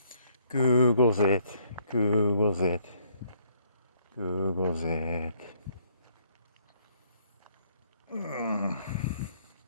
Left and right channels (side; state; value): both; inverted; correlation -0.67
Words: Googles it. Googles it. Googles it.